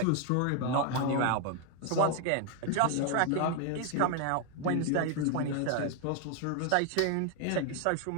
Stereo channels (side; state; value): both; different; correlation 0.01